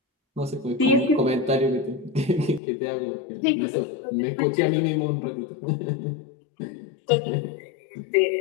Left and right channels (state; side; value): drops out; right; at 2.6 s